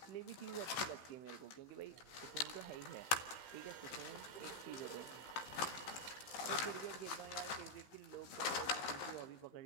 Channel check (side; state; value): right; late; 15 ms